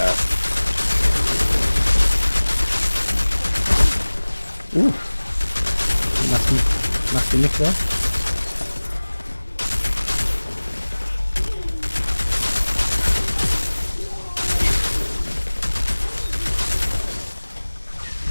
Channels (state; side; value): inverted; both; correlation -1.00